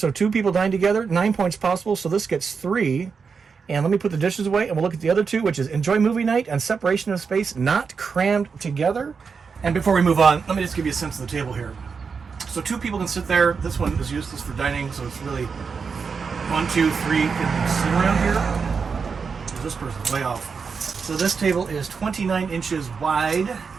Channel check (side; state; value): left; quieter; 5.5 dB